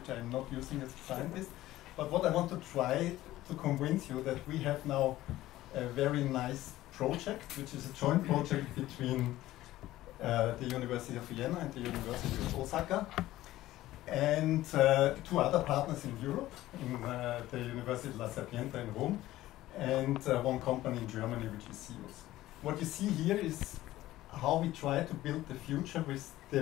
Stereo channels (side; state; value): right; quieter; 15.6 dB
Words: I'm not using as a scientist. But what I want to try to convince you that we have now a very nice project, which is a joint project between the University of Vienna and the University of Osaka, and two other partners in Europe, in the University La Sapienza in Rome, and one company in Germany, which is SIUS. What you see here is how we try to build the future with